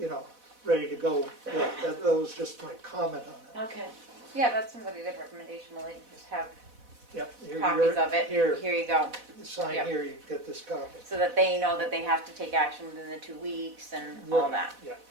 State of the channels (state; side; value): late; left; 4.1 ms